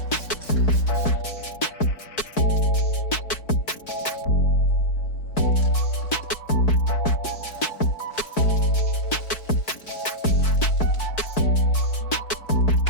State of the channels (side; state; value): right; late; 4.6 ms